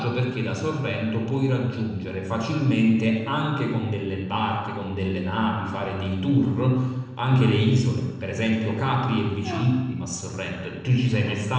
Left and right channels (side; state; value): both; identical; correlation 1.00